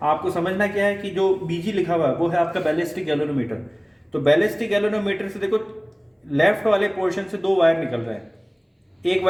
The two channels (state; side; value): identical; both; correlation 1.00